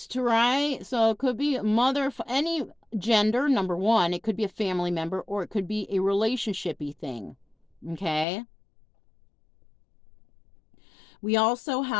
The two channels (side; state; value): right; drops out; at 8.2 s